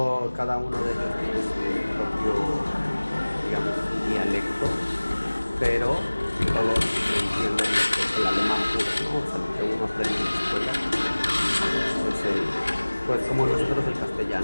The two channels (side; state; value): both; inverted; correlation -1.00